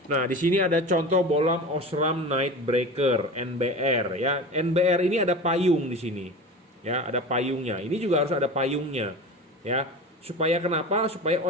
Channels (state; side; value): normal; both; correlation 0.32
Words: Nah, di sini ada contoh bohlam Osram Night Breaker NBR ya. NBR ini ada payung di sini. Ya, ada payungnya. Ini juga harus ada payungnya ya. Supaya kenapa? Supaya